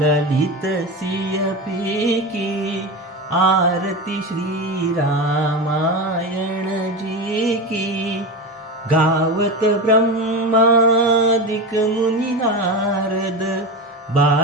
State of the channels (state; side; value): normal; both; correlation 0.22